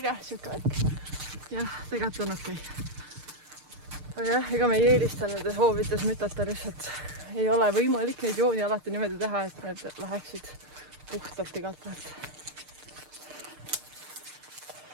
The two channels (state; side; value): late; left; 6.6 ms